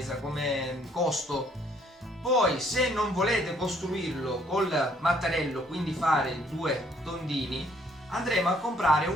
come costo. Poi se non volete costruirlo col mattarello, quindi fare due tondini, andremo a comprare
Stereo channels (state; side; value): normal; both; correlation 0.65